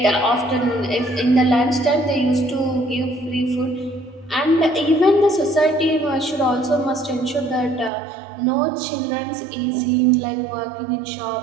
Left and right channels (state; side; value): drops out; left; at 7.9 s